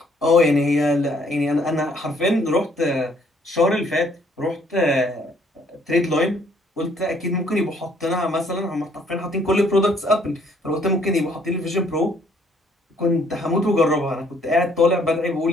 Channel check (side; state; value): both; normal; correlation 0.64